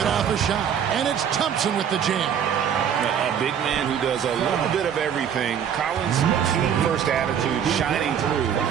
off a shot. And it's Thompson with the jam. A big man who does a little bit of everything. Collins' team-first attitude shining through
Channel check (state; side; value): quieter; left; 8.4 dB